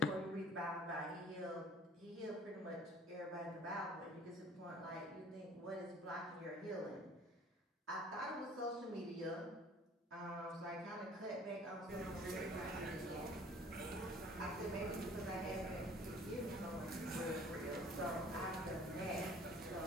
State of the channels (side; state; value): both; normal; correlation 0.51